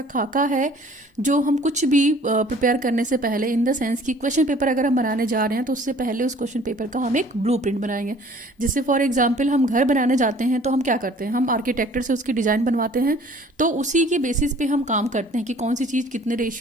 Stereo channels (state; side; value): normal; both; correlation 0.52